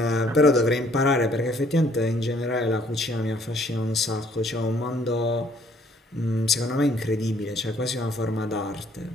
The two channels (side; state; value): both; normal; correlation 0.62